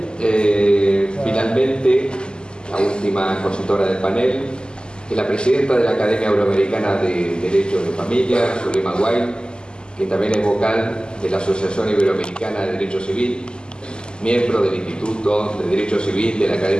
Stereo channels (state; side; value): late; right; 0.047 ms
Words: Finalmente, la última expositora del panel es la presidenta de la Academia Euroamericana de Derecho de Familia, Zulema Guay, que también es vocal de la Asociación Iberoamericana de Derecho Civil, miembro del Instituto de Derecho Civil de la